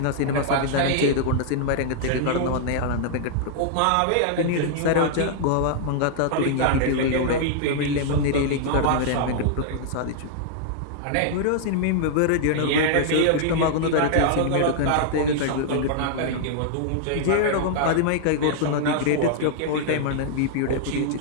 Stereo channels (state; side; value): different; both; correlation -0.01